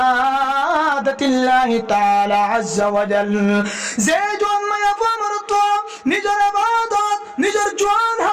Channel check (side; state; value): both; identical; correlation 1.00